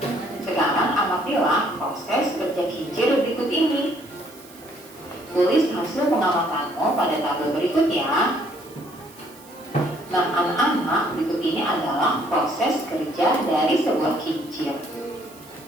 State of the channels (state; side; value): noise; right; hiss, 23 dB below the sound